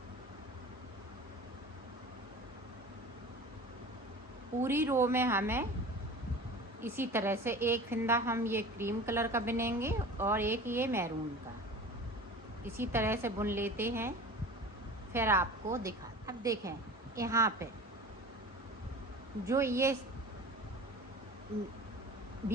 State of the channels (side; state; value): both; normal; correlation 0.37